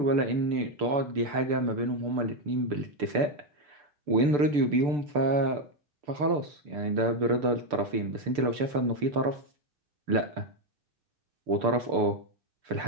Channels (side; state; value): left; late; 6.8 ms